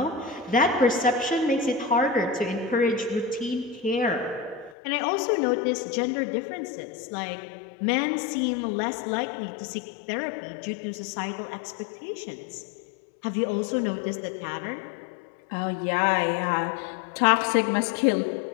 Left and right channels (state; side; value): drops out; right; at 4.8 s